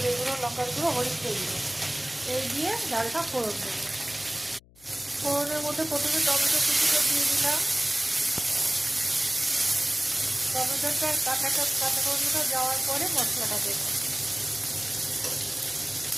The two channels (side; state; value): left; noise; hum, 27 dB below the sound